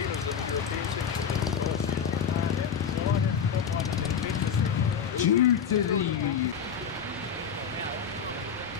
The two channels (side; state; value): right; quieter; 7.1 dB